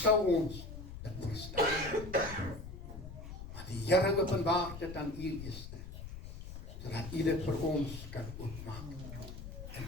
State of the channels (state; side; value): noise; left; rumble, 10 dB below the sound